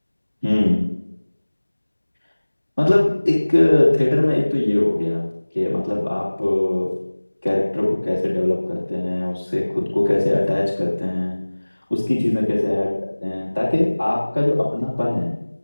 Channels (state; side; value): inverted; both; correlation -1.00